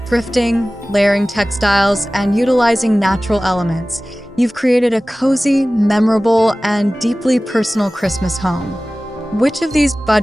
thrifting, layering textiles, and utilizing natural elements, you've created a cozy, memorable, and deeply personal Christmas home. Which of these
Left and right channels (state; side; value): normal; both; correlation 0.97